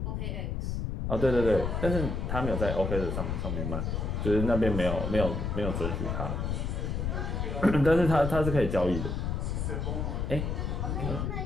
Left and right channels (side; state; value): left; noise; rumble, 2 dB below the sound